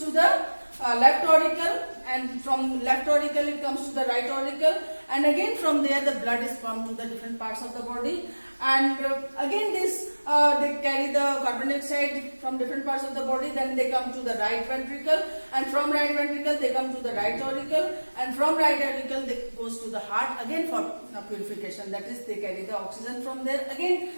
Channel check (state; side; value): inverted; both; correlation -1.00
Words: to the left auricle, and from left auricle it comes to the right auricle, and again from there the blood is pumped to the different parts of the body, and again this they carry the carbon dioxide from different parts of the body, then they come to the right ventricle, and from right ventricle they come to the right auricle, and from right auricle they goes to the heart again for purification, that is they carry the oxygen from there, again